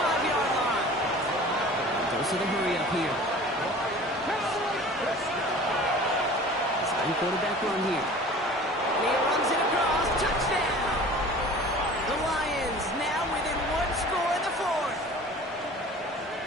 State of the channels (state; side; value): normal; both; correlation 0.43